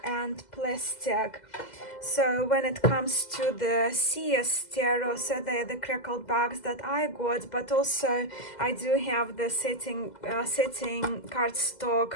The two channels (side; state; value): right; late; 2.0 ms